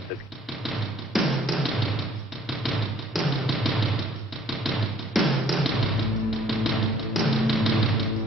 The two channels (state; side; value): normal; both; correlation 0.58